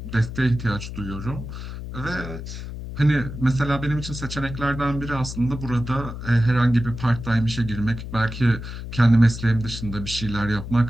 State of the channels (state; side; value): noise; left; hum, 9 dB below the sound